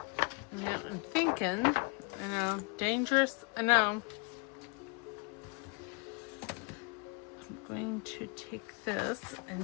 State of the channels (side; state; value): right; quieter; 33.4 dB